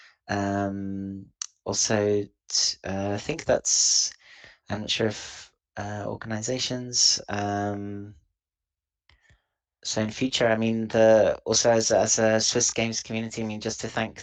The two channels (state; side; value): identical; both; correlation 1.00